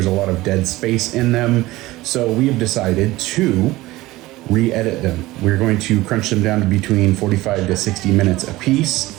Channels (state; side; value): quieter; left; 18.5 dB